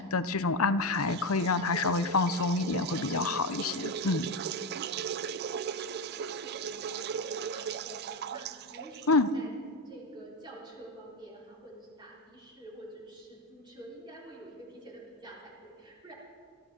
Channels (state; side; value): normal; both; correlation 0.13